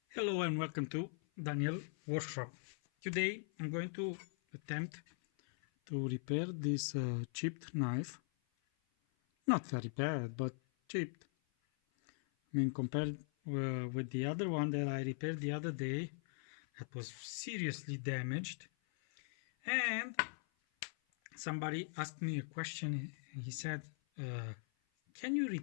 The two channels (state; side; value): silent; right; 51 dB below the other